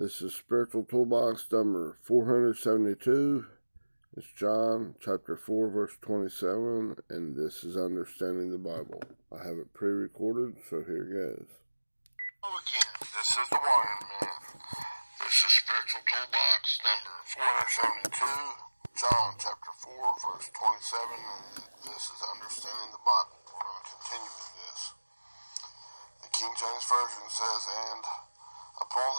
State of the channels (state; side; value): inverted; both; correlation -1.00